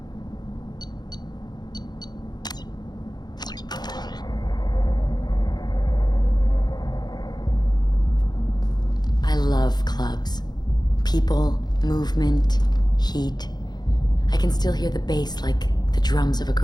I love clubs. People, movement, heat. I can still hear the bass like the drums of a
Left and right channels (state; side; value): late; right; 0.20 ms